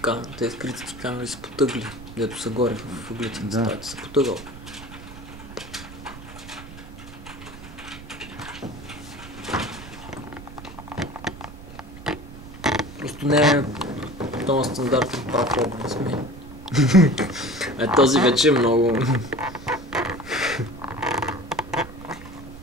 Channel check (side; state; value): right; noise; rumble, 15 dB below the sound